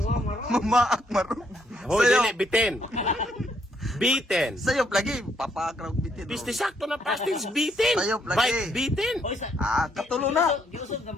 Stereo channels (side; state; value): both; normal; correlation 0.72